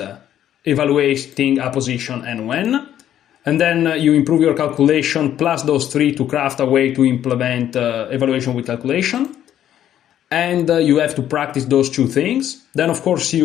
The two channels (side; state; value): right; quieter; 11.0 dB